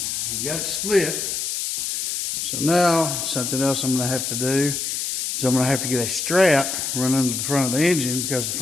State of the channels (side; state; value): left; noise; hiss, 2 dB below the sound